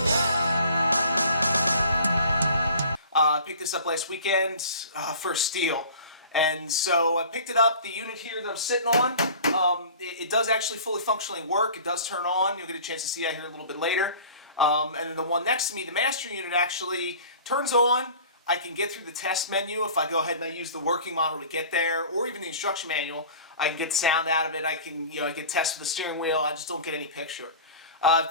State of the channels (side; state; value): both; inverted; correlation -0.43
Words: I picked this up last weekend for a steal. And so I picked it up. The unit here that I'm sitting on, it does actually fully functionally work. It does turn on. You'll get a chance to see that here a little bit later. And then the one next to me, the master unit, actually turns on. I can get through the test menu if I go ahead and I use the working model to get there, or even the instruction manual. I can get sound out of it. I can, I get test with the steering wheel. I just don't get any picture. I've